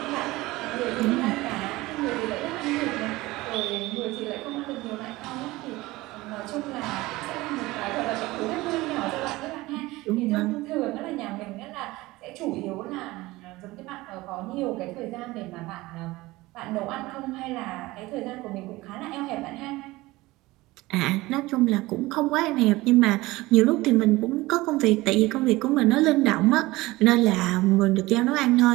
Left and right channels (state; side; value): quieter; left; 19.8 dB